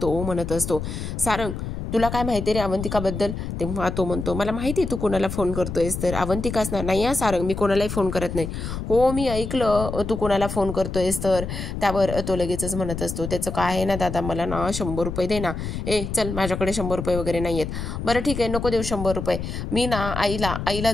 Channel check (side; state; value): left; noise; rumble, 6 dB below the sound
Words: तो म्हणत असतो, सारंग तुला काय माहिती रे अवंतिकाबद्दल? तेव्हा तो म्हणतो, मला माहिती तू कोणाला फोन करतोयस तर. अवंतिकाच ना? नाही सारंग मी कोणालाही फोन करत नाही. हो मी ऐकलं तू कोणाला फोन करतोयस तर. त्यावर तो लगेचच म्हणत असतो, त्याचं काय आहे ना दादा, मला ना 100 रुपये दे ना. चल माझ्याकडे 100 रुपये वगैरे नाही आहेत. बरं ठीक आहे नको देऊ 100 रुपये, मी ना आईला